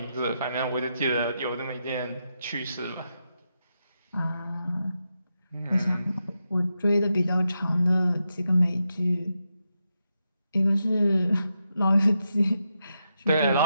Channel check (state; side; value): inverted; both; correlation -0.85